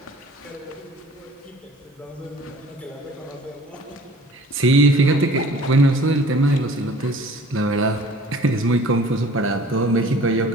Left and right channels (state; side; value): normal; both; correlation 0.49